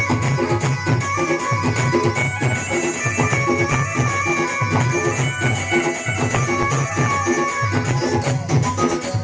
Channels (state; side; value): identical; both; correlation 1.00